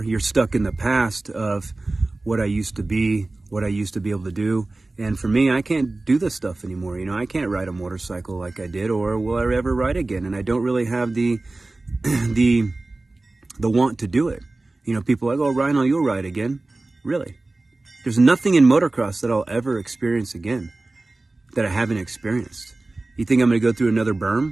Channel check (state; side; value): quieter; left; 3.1 dB